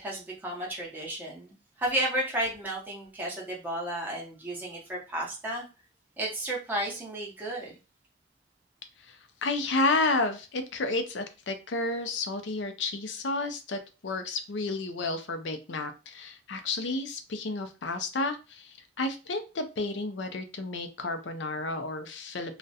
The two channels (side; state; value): both; normal; correlation 0.04